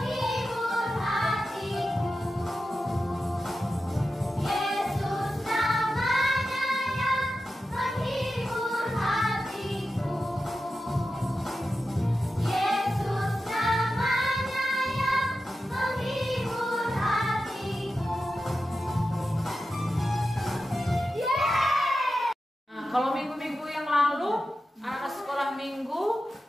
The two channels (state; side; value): normal; both; correlation 0.92